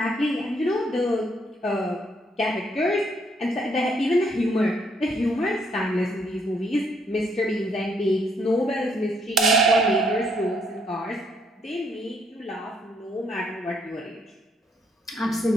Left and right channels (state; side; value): normal; both; correlation 0.70